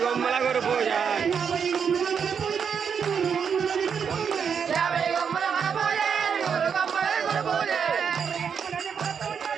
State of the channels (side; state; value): left; quieter; 6.9 dB